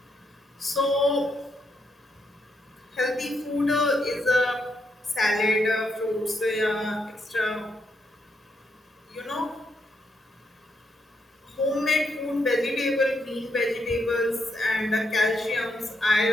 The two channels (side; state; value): both; normal; correlation 0.79